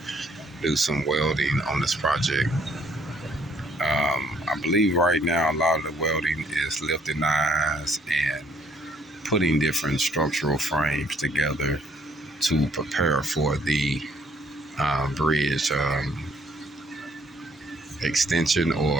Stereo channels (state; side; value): normal; both; correlation 0.65